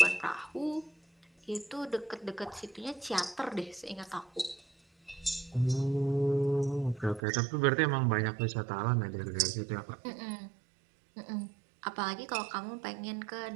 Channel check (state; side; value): drops out; left; at 7.2 s